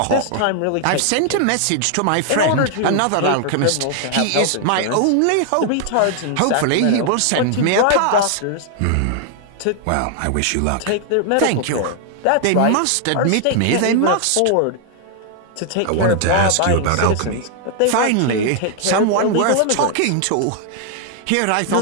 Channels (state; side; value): different; both; correlation 0.00